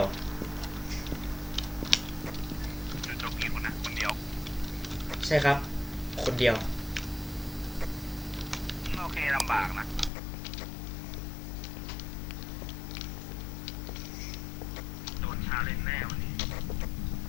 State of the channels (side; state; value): right; drops out; at 10.1 s